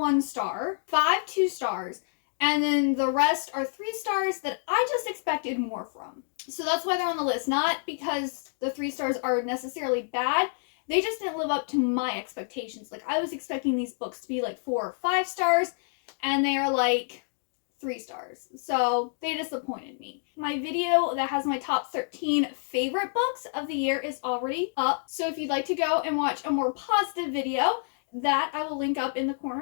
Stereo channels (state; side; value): silent; right; digital silence